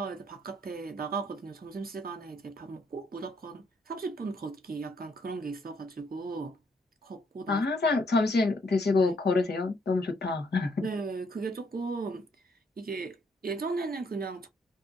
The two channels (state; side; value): normal; both; correlation 0.70